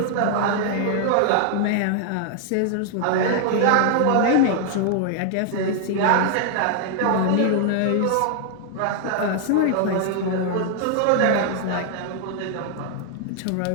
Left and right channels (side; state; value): both; different; correlation 0.00